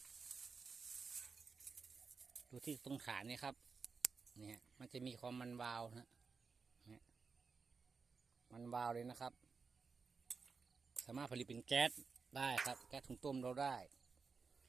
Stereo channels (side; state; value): left; quieter; 5.0 dB